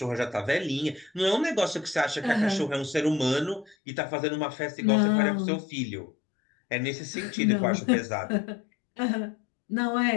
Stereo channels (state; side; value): drops out; right; at 3.8 s